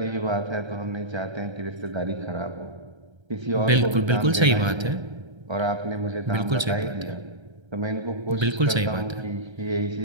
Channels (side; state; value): left; late; 1.3 ms